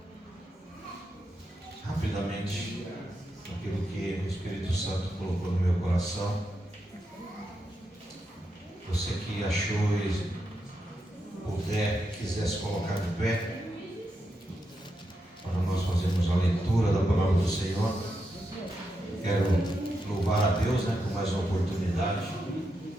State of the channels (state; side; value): normal; both; correlation 0.85